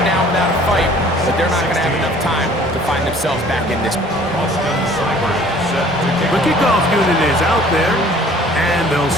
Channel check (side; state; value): both; normal; correlation 0.53